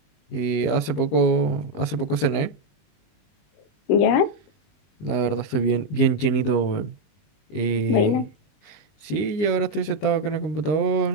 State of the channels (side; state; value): right; late; 19 ms